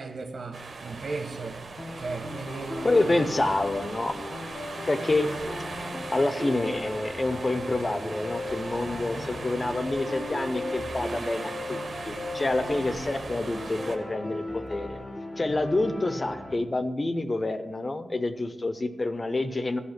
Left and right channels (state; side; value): normal; both; correlation 0.95